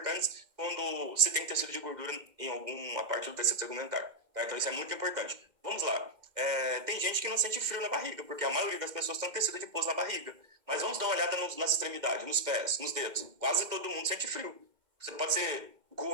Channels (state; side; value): late; left; 2.1 ms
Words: quando se tem tecido de gordura em alguma parte do tecido tegumentar. Tá? Então, isso é muito importante. Vamos lá. Tem gente que não sente frio na barriga, porque a maioria das pessoas tem tecido adiposo na barriga. Mas vamos dar uma olhada nas extremidades, nos pés, nos dedos. Quase todo mundo sente frio. Você pode ser